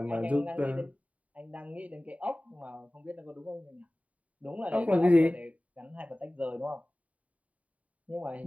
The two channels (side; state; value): left; late; 0.068 ms